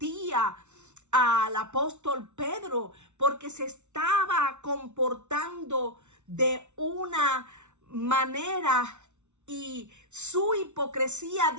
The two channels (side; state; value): left; late; 0.83 ms